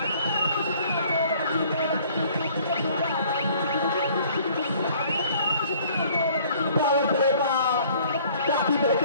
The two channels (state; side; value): inverted; both; correlation -0.57